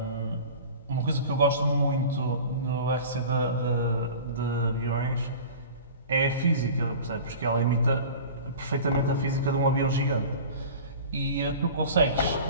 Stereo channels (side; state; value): both; inverted; correlation -0.38